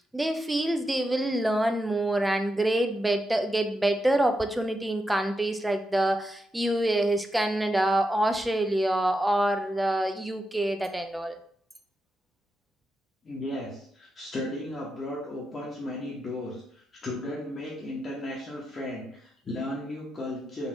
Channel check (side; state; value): both; normal; correlation 0.87